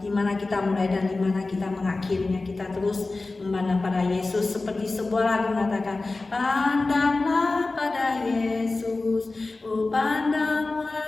mana kita mulai dan di mana kita mengakhirinya. Kita terus memandang pada Yesus, seperti sebuah lagu mengatakan, pandanglah pada Yesus, oh pandang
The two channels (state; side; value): quieter; right; 3.4 dB